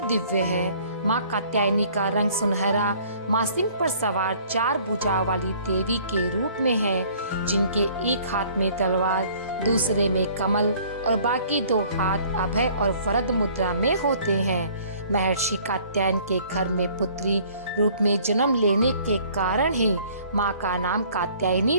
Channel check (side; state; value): both; inverted; correlation -0.55